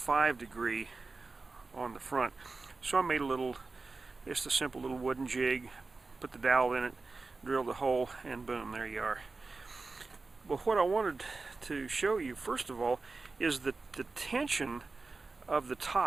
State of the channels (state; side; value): quieter; left; 3.8 dB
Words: degree on the front. So I made just a simple little wooden jig, put the dowel in it, drilled the hole, and boom, there you are. But what I wanted to show you first of all is that the tension of the